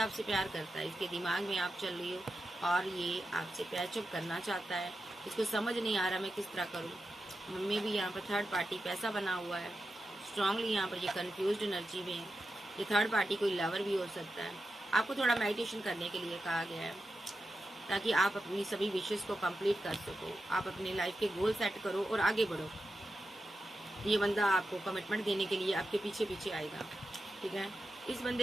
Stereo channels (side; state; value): both; normal; correlation 0.90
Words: प्यार करता है। इसके दिमाग में आप चल रही हो और ये आपसे पैचअप करना चाहता है। इसको समझ नहीं आ रहा मैं किस तरह करूँ। मम्मी भी यहाँ पर थर्ड पार्टी पैसा बना हुआ है, स्ट्रांगली यहाँ पर ये कन्फ्यूज्ड एनर्जी में है। ये थर्ड पार्टी कोई लवर भी हो सकता है। आपको थोड़ा मेडिटेशन करने के लिए कहा गया है, ताकि आप अपनी सभी विशेष को कंप्लीट कर सको, आप अपनी लाइफ के गोल सेट करो और आगे बढ़ो। ये बंदा आपको कमिटमेंट देने के लिए आपके पीछे पीछे आएगा, ठीक है। इस